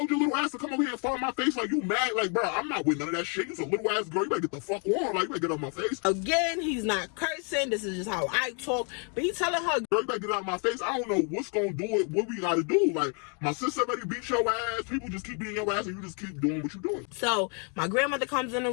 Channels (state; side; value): quieter; right; 38.8 dB